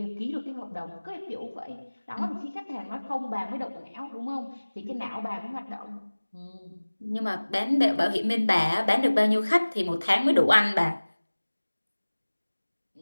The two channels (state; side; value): inverted; both; correlation -1.00